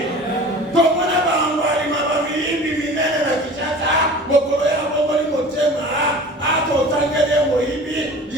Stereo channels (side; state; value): both; normal; correlation 0.41